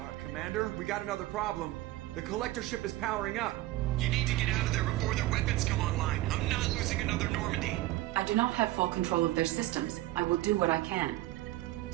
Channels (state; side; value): quieter; left; 17.0 dB